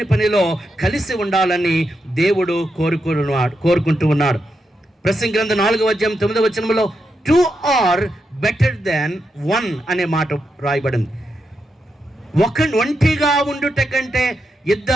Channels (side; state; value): both; normal; correlation 0.85